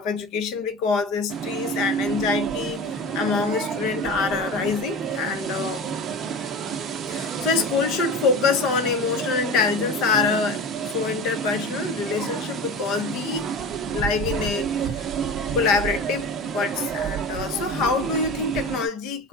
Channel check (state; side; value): normal; both; correlation 0.32